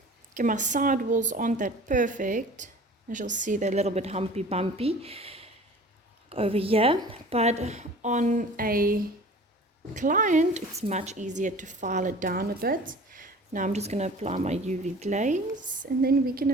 Okay, my side walls aren't that perfect. As you'll see, they're a little bit humpy bumpy over here, but on a client it's much easier to file it down a bit. Now I'm just going to apply my UV glaze and then we can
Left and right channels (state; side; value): normal; both; correlation 0.43